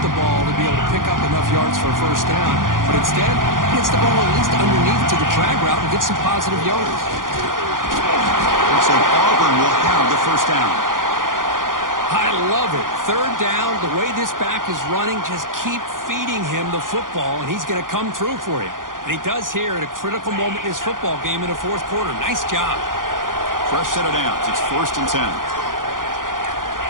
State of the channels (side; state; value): left; late; 0.90 ms